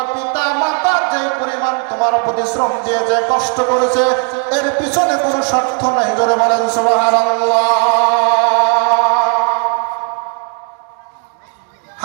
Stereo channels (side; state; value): left; quieter; 38.1 dB